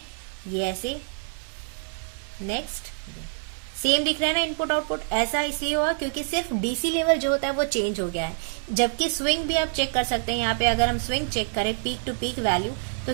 ऐसे, नेक्स्ट सेम दिख रहा है ना इनपुट आउटपुट। ऐसा इसलिए हुआ क्योंकि सिर्फ डीसी लेवल जो होता है वो चेंज हो गया है, जबकि स्विंग भी आप चेक कर सकते हैं। यहाँ पे अगर हम स्विंग चेक करें पीक टू पीक वैल्यू, तो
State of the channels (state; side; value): silent; left; digital silence